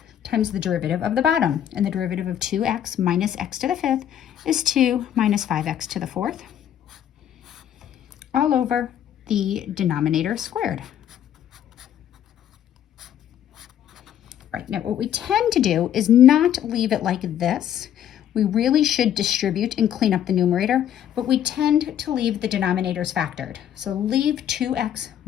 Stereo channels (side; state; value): right; quieter; 10.3 dB